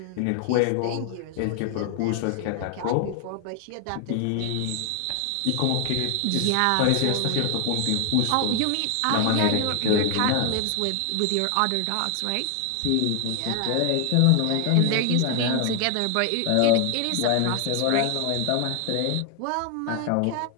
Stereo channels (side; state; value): both; different; correlation 0.00